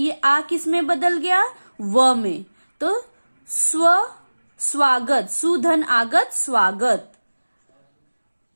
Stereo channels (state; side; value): inverted; both; correlation -1.00